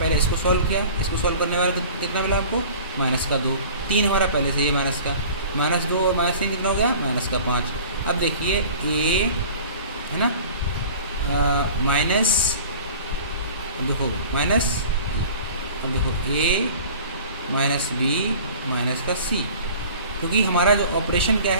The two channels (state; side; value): inverted; both; correlation -0.44